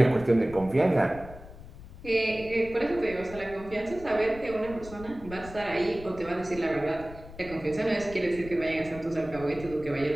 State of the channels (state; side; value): noise; left; rumble, 16 dB below the sound